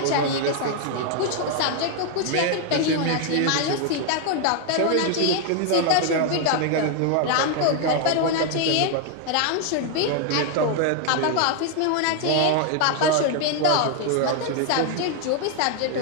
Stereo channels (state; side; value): different; both; correlation 0.00